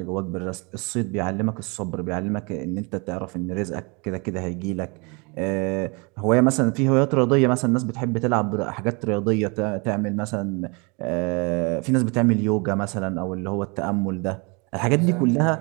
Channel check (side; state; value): left; quieter; 30.6 dB